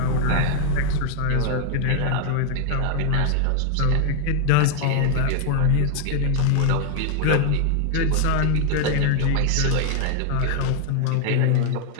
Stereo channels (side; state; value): both; different; correlation 0.00